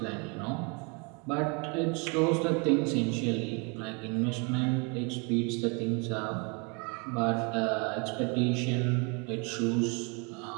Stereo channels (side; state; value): left; quieter; 32.5 dB